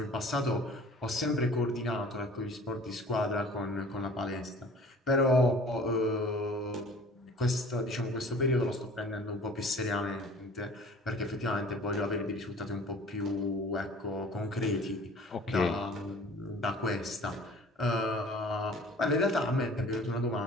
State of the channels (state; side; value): normal; both; correlation 0.46